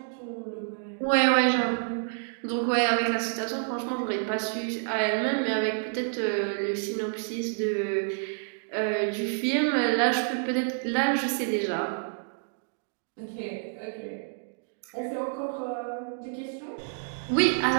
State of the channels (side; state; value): left; silent; digital silence